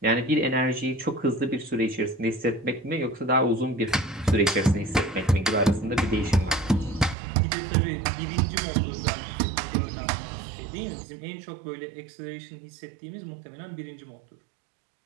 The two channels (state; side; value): drops out; left; at 7.2 s